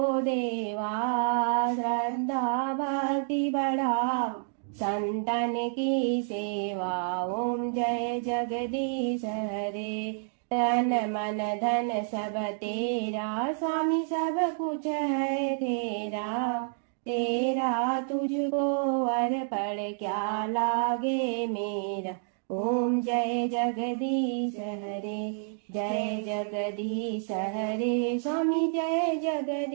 देवा। श्रद्धा भक्ति बढ़ाओ, संतन की सेवा। ओम जय जगदीश हरे। तन मन धन सब तेरा, स्वामी सब कुछ है तेरा। तेरा तुझको अर्पण क्या लागे मेरा। ओम जय जगदीश हरे, जय जगदीश हरे। स्वामी जय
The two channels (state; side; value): silent; left; digital silence